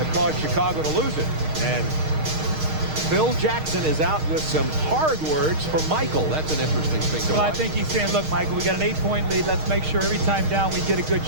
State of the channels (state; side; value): late; left; 6.4 ms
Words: caused Chicago to lose it. And Phil Jackson is out with some hard words for Michael. That's an interesting thing to watch. I think he's saying, look, Michael, we got an 8-point lead. Let's make sure every time down we get a good